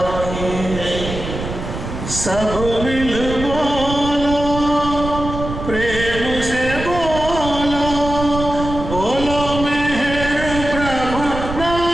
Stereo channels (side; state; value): right; noise; rumble, 7 dB below the sound